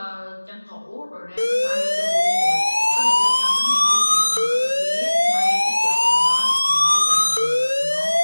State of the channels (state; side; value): inverted; both; correlation -1.00